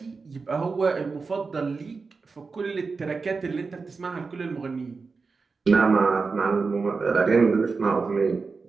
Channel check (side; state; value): left; quieter; 4.5 dB